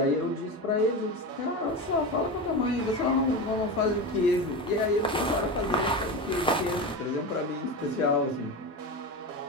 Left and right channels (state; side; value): normal; both; correlation 0.23